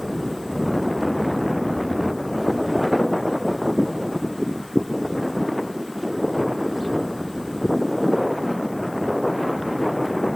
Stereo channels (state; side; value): noise; left; hiss, 23 dB below the sound